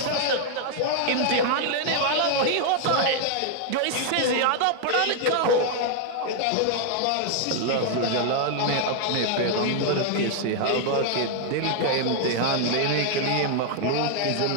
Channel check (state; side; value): different; both; correlation 0.00